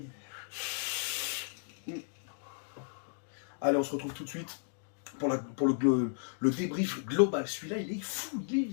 Allez, on se retrouve tout de suite pour le débrief global. Celui-là, il est fou.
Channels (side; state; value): right; silent; digital silence